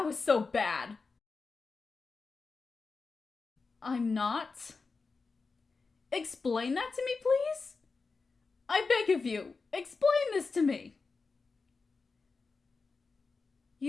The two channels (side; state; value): right; quieter; 4.3 dB